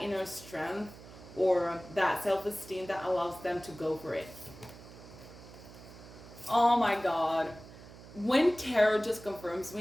inner strength or that self-esteem that allows them to go for it. Oh my god. When tarot just confirms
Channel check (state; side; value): noise; right; hum, 18 dB below the sound